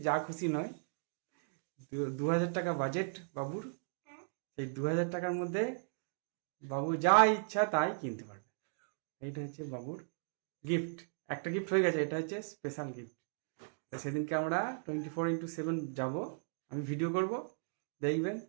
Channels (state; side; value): silent; left; digital silence